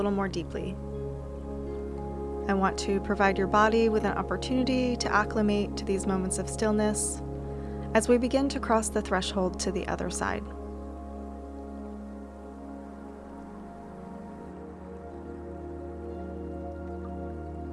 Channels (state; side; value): identical; both; correlation 1.00